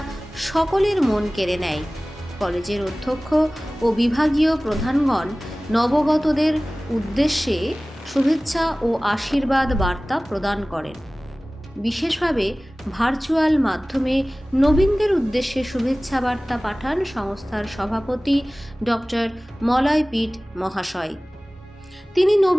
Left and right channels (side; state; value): both; normal; correlation 0.98